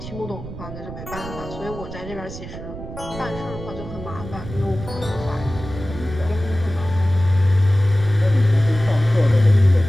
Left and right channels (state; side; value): noise; right; rumble, 11 dB below the sound